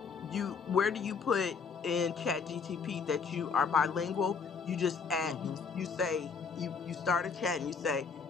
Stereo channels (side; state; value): right; quieter; 5.6 dB